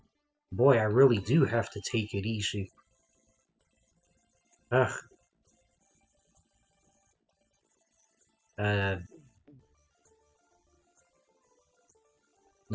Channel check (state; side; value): identical; both; correlation 1.00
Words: Boy, I really do have to take it easy. Ugh.